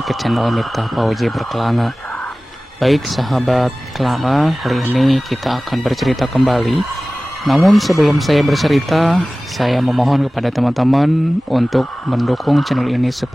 ke channel Miftah Fauzi Berkelana. Baik sahabat Kelana, kali ini kita akan bercerita kembali. Namun sebelum saya bercerita, saya memohon kepada teman-teman untuk mendukung channel ini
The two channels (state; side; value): normal; both; correlation 0.97